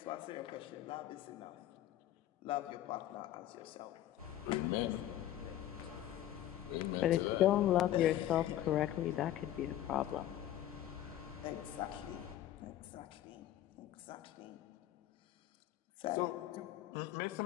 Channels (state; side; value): quieter; right; 12.7 dB